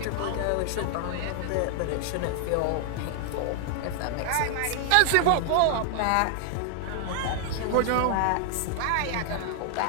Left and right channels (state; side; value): different; both; correlation 0.00